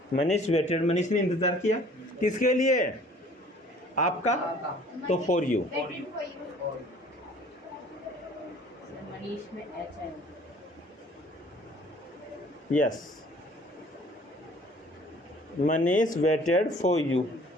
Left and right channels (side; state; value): both; normal; correlation 0.53